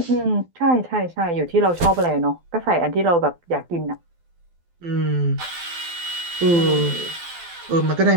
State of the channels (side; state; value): left; late; 12 ms